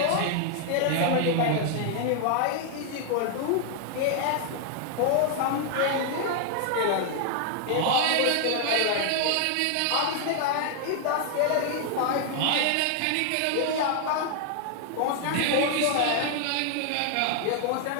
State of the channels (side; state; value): both; different; correlation 0.00